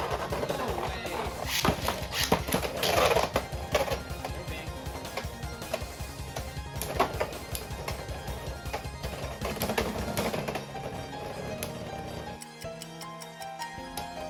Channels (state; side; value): identical; both; correlation 1.00